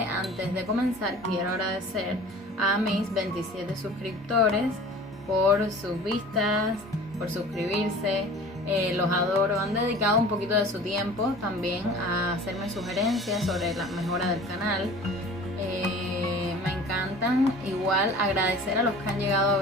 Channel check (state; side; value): normal; both; correlation 0.43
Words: Antes de comenzar quiero agradecer a mis 27 suscriptores por sus vistas, por suscribirse. Los adoro, han dedicado un poquito de su tiempo también a hacerme sugerencias sobre la mejora del canal. Me encantan. Igual agradecer a los que han llegado a